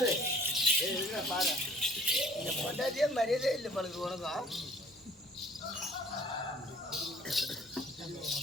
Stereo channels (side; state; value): both; normal; correlation 0.53